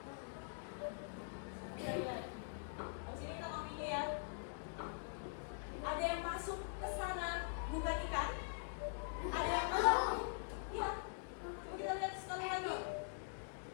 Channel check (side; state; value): right; silent; digital silence